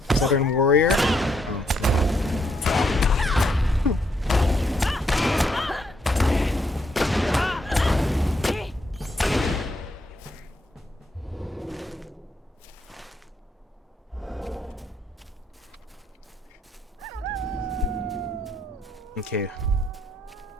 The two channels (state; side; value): normal; both; correlation 0.75